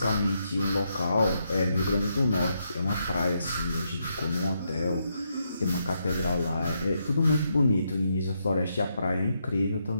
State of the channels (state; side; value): inverted; both; correlation -0.80